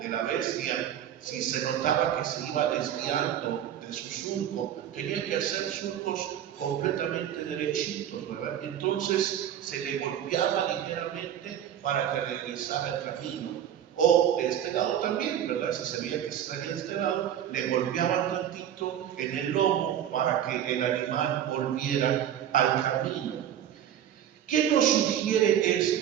la bestia si se notaba que se iba desviando de su surco. Tenía que hacer surcos completamente derechitos, ¿verdad? Entonces se le golpeaba ligeramente para que regresara el camino. O de este lado también, ¿verdad? Si se veía que se salía de este lado, le golpeaban tantito en el lomo para que el animal volviera al camino. ¿Qué nos sugiere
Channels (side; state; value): left; quieter; 10.3 dB